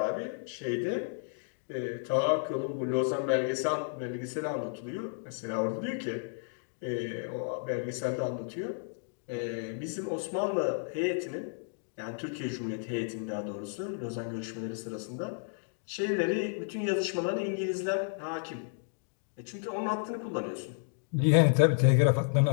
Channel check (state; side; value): silent; right; digital silence